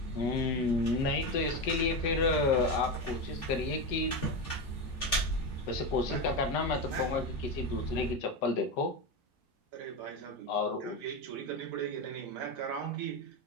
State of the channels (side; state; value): both; normal; correlation 0.16